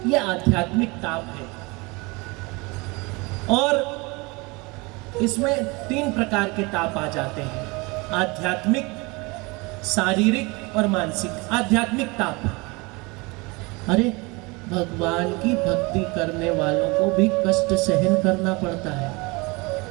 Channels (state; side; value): quieter; left; 26.1 dB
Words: यह आध्यात्मिक ताप है। और इसमें 3 प्रकार के ताप आ जाते हैं, आध्यात्मिक, शारीरिक और मानसिक। आध्यात्मिक ताप, अरे भगवान की भक्ति करने वालों को भी कष्ट सहन करना पड़ता है,